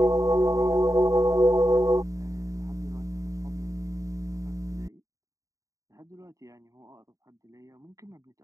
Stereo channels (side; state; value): left; late; 0.16 ms